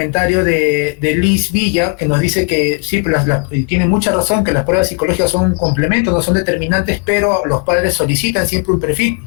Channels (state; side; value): quieter; right; 33.4 dB